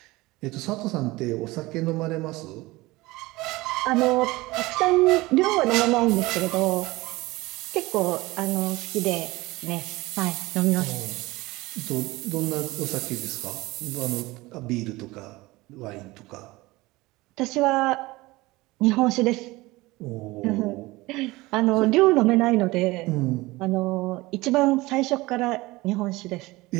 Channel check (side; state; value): left; quieter; 20.7 dB